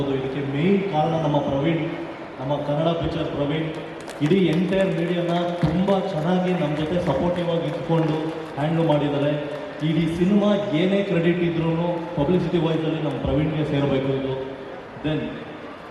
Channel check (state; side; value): identical; both; correlation 1.00